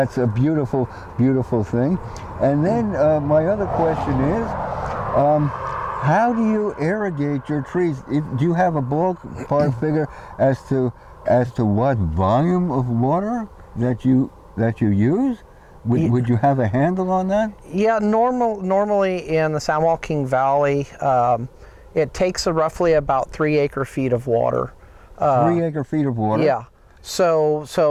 a beautiful thing. And then my other question is, how do you irrigate your trees? Do you have a ballpark figure as to what volume of water that you use? Would you have a handle on that? Yeah, normally in the San Joaquin Valley, it takes roughly about 3 acre-feet of water. 3 acre-feet of water? Yeah. So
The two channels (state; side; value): identical; both; correlation 1.00